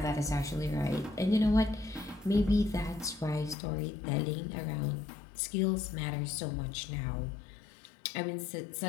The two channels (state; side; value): drops out; right; at 3.6 s